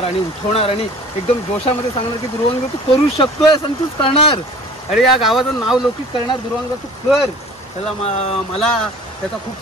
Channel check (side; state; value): both; normal; correlation 0.45